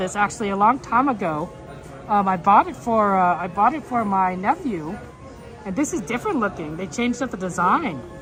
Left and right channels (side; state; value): both; identical; correlation 1.00